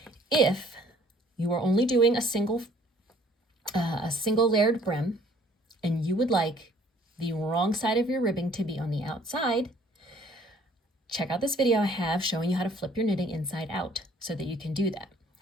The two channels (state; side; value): normal; both; correlation 0.58